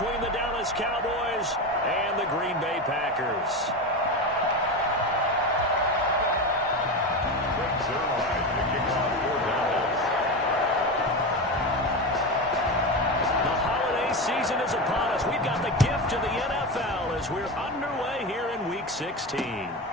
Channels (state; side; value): normal; both; correlation 0.20